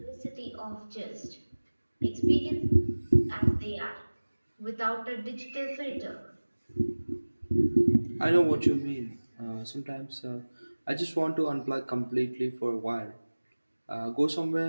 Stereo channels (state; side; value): inverted; both; correlation -1.00